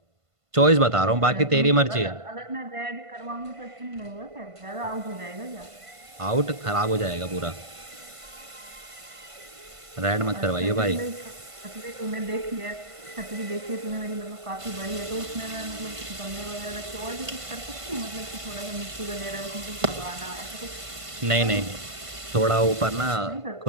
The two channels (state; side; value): late; left; 1.5 ms